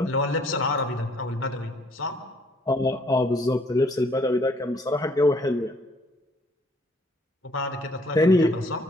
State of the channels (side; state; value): both; normal; correlation 0.63